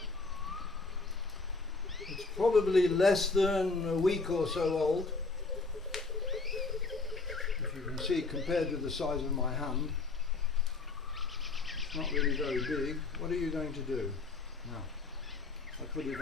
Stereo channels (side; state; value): right; quieter; 3.9 dB